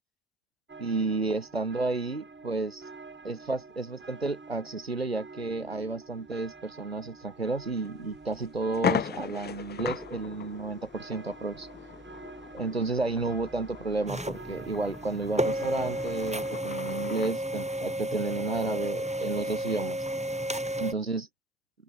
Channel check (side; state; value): both; normal; correlation 0.46